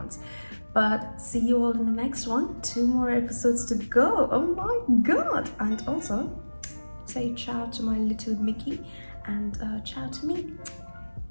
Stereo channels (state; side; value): inverted; both; correlation -1.00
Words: But see you all in the next one. 2 more episodes to go. Oh my god. And also say ciao to my little Mickey and ciao to me.